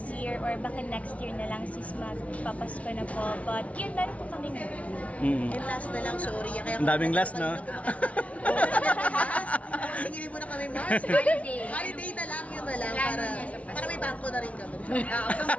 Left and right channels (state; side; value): late; right; 0.065 ms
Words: year or baka next year na lang sis magpapasko na po. But yun, meron po kami Mm. And last na lang, sorry. Kaya Ang daming last, no? Singilin mo na kami, Mars. Holiday. Holiday na lang, yun na lang. Plano Para, niya sa Pasko. para may bangko na rin kami.